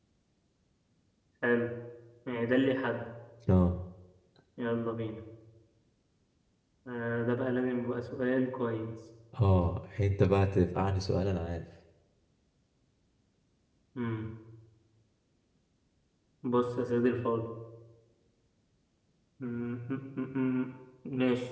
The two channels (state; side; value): identical; both; correlation 1.00